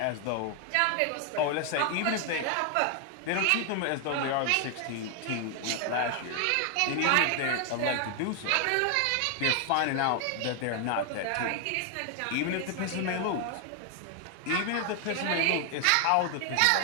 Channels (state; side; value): different; both; correlation 0.00